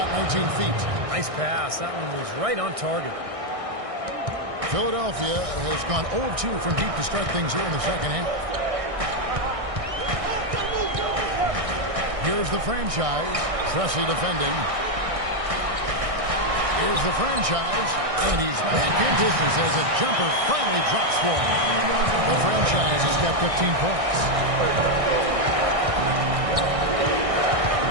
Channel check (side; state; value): left; late; 1.6 ms